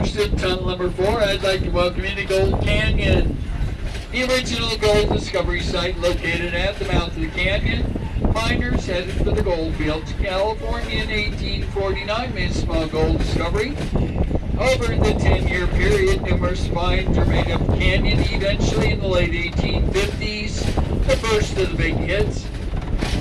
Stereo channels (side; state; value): both; identical; correlation 1.00